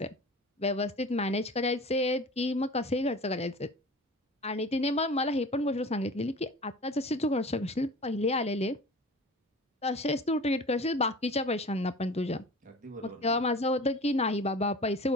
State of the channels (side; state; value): both; normal; correlation 0.39